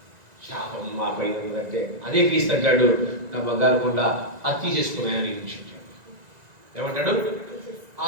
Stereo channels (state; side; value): late; left; 1.9 ms